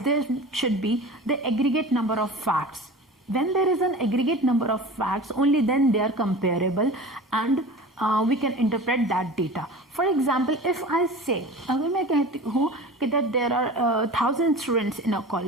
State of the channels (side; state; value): both; normal; correlation 0.36